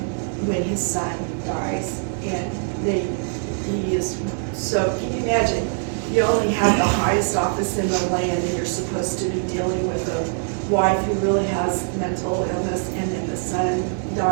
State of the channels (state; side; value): silent; left; 61 dB below the other